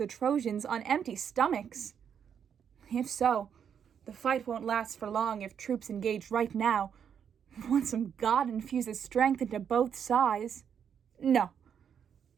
Trojans on empty stomachs. If so, the fight won't last for long if troops engage right now, once some god infuses strength into both sides. No.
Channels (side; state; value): left; quieter; 7.9 dB